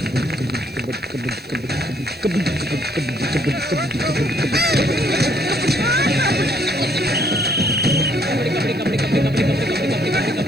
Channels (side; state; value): right; noise; hiss, 28 dB below the sound